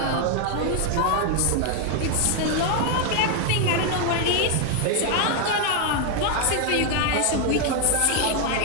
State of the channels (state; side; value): different; both; correlation 0.01